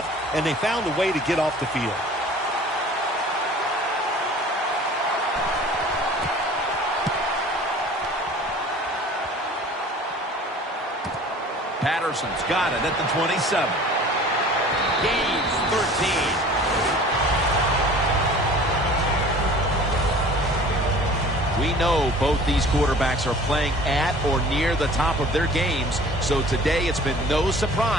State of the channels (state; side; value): normal; both; correlation 0.46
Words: and they found a way to get off the field. Patterson's got it at the 27. Gains 13. We know both these quarterbacks are playing at or near the top of their games, so today it's been no